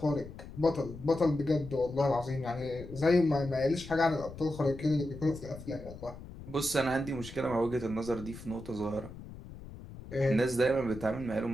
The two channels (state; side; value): noise; left; rumble, 14 dB below the sound